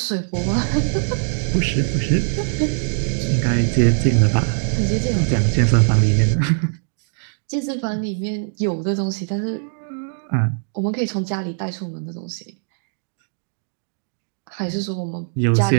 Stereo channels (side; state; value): left; silent; digital silence